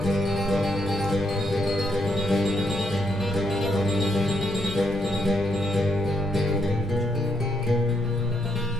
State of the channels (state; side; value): normal; both; correlation 0.76